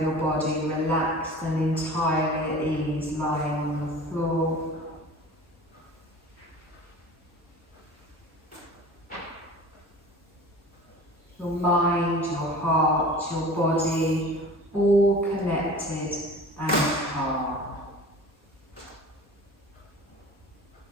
your body relaxed and entirely at ease, lying on the floor. Your mind, your heart, your body, all connected and calm.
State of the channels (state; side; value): normal; both; correlation 0.40